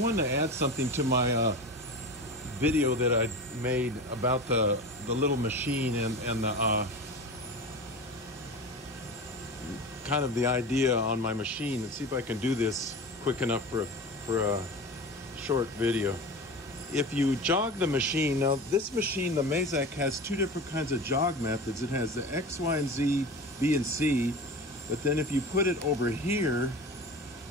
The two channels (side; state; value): both; normal; correlation 0.31